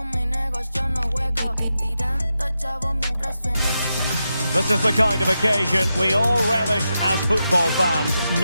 mi negocio, no juego. Tirando chavo mientras suena. This is the kind of occasion we all relish as football fans.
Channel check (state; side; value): inverted; both; correlation -0.88